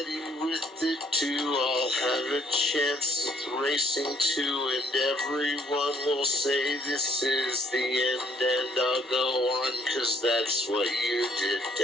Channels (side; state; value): both; normal; correlation 0.65